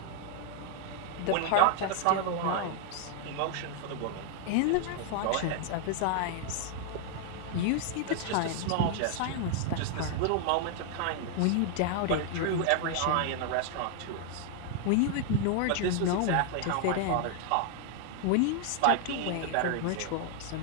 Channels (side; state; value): both; different; correlation 0.00